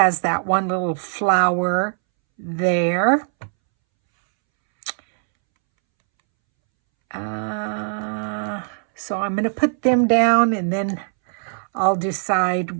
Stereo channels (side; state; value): left; silent; 65 dB below the other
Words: that one little flower there. So I'm going to put them down, and then I'll